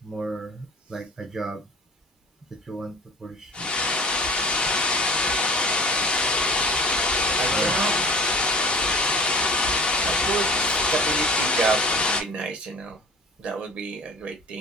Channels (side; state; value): both; normal; correlation 0.42